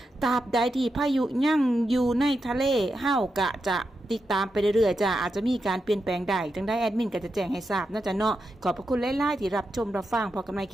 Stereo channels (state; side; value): normal; both; correlation 0.87